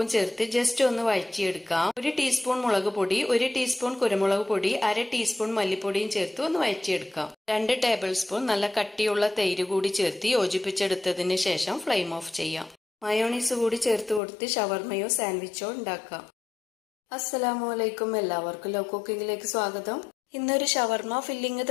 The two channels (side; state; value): right; drops out; at 14.2 s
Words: ചേർത്ത് ജസ്റ്റ് ഒന്ന് വഴറ്റിയെടുക്കാം. 1 ടീസ്പൂൺ മുളക് പൊടി, 1 ടീസ്പൂൺ കുരുമുളക് പൊടി, 1/2 ടീസ്പൂൺ മല്ലിപ്പൊടിയും ചേർത്ത് ഒന്ന് വഴറ്റിയെടുക്കാം. 2 ടേബിൾ സ്പൂൺ നല്ല കട്ടിയുള്ള തൈര് കൂടി ചേർത്ത് യോജിപ്പിച്ചെടുത്തതിന് ശേഷം ഫ്ലെയിം ഓഫ് ചെയ്യാം. മയോണീസ് കൂടി ചേർത്ത് കൊടുത്ത് ഷവർമയോ സാൻഡ്വിച്ചോ ഉണ്ടാക്കാം. അസ്സലാമലൈക്കും. എല്ലാവർക്കും ലവ് കുക്കിങ്ങിലേക്ക് സ്വാഗതം. ഇന്നൊരു ഷവർമ ഫില്ലിംഗ്